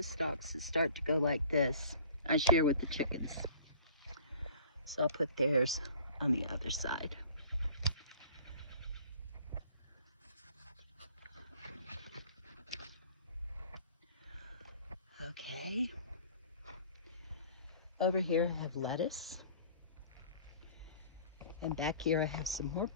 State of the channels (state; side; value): inverted; both; correlation -0.49